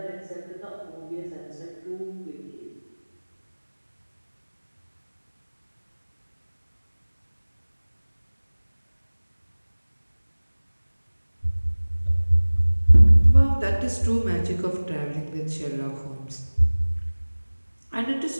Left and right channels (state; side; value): inverted; both; correlation -1.00